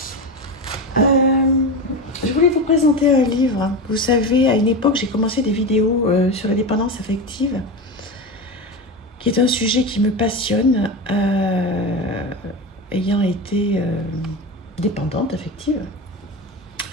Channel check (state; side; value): normal; both; correlation 0.21